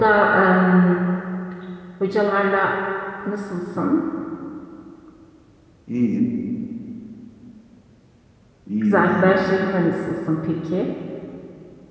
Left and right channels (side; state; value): both; identical; correlation 1.00